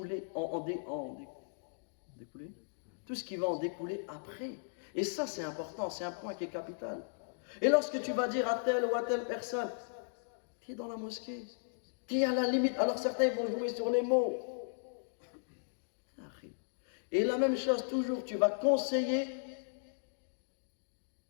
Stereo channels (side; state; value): right; silent; digital silence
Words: tout ce qui va en découler après. Et ça, c'est important, c'est un point qui est capital. Et lorsque tu vas dire à telle ou à telle personne, tu es dans la mosquée, tu es à la limite, alors certains vont jouer sur les mots. Et la même chose, toujours, tu vas conseiller,